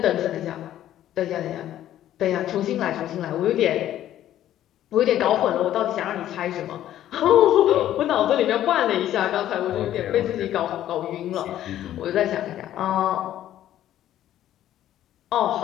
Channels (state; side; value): quieter; right; 12.3 dB